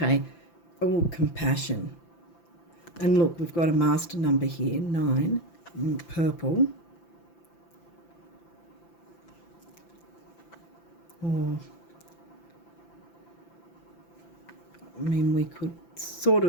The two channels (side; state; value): right; late; 5.9 ms